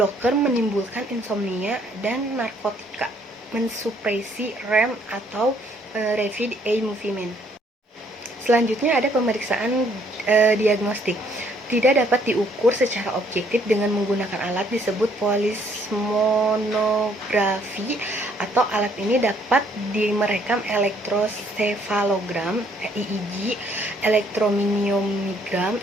menimbulkan insomnia, dan narkotika mensupresi REM atau rapid eye movement. Selanjutnya ada pemeriksaan diagnostik. Tidak dapat diukur secara objektif dengan menggunakan alat disebut polismonografi, atau alat ini dapat merekam elektrosefalogram (EEG), elektromiogram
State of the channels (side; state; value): both; normal; correlation 0.65